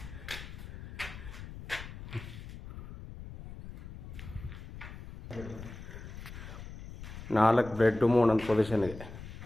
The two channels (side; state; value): left; noise; rumble, 12 dB below the sound